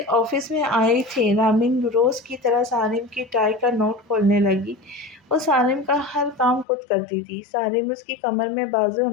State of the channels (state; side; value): drops out; right; at 6.7 s